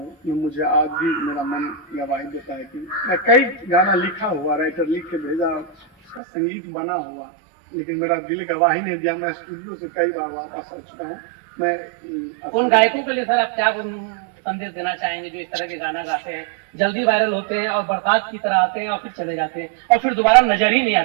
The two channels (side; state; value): left; drops out; at 6.2 s